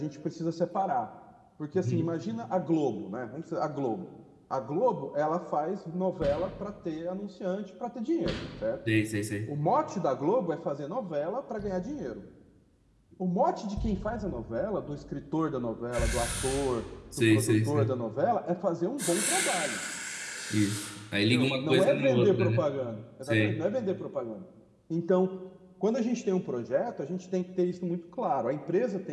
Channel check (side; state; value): both; identical; correlation 1.00